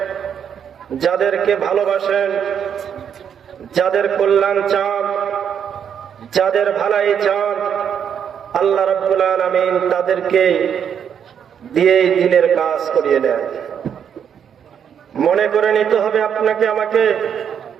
যাদেরকে ভালোবাসেন, যাদের কল্যাণ চান, যাদের ভালাই চান, আল্লাহ রাব্বুল আলামিন তাদেরকে দিয়ে দিনের কাজ করিয়ে দেয়। মনে করে নিতে হবে আপনাকে আমাকে,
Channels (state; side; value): quieter; left; 8.1 dB